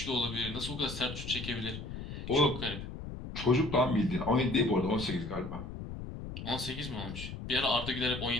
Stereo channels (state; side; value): noise; left; rumble, 8 dB below the sound